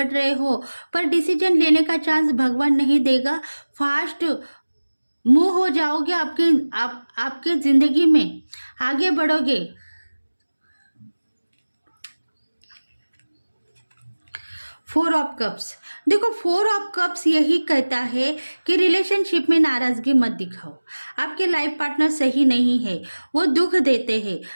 रहे हो, पर डिसीजन लेने का चांस भगवान नहीं देगा। फास्ट मूव हो जाओगे आपके ज़िंदगी में, आगे बढ़ोगे। फोर ऑफ कप्स, देखो फोर ऑफ कप्स यही कहता है कि रिलेशनशिप में नाराज़गी मत दिखाओ। आपके लाइफ पार्टनर सही नहीं है, वो दुख देते हैं,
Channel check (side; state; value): both; inverted; correlation -1.00